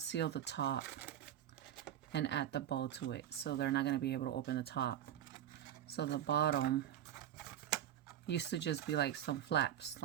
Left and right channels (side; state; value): left; quieter; 10.9 dB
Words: the top and add the bow to it, so they're not gonna be able to open the top. So the bottom used to just be like some flaps,